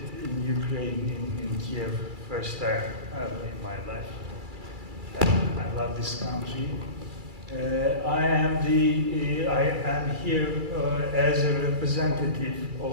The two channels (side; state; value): left; late; 2.3 ms